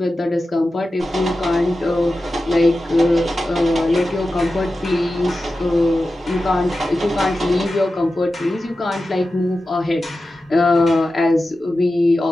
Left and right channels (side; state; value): both; normal; correlation 0.93